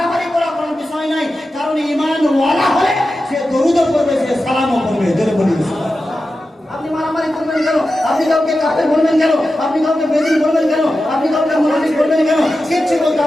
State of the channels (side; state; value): both; normal; correlation 0.92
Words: করার কোনো বিষয় নাই, কারণ ঈমান ওয়ালা হলে সে দরুদও করবে, সে সালামও করবে। জোরে বলি আপনি মারামারি করবেন কেন? আপনি কাউকে কাফের বলবেন কেন? আপনি কাউকে বেদিন বলবেন কেন? আপনি কাউকে মুনাফিক বলবেন কেন? কিচ্ছু বলতে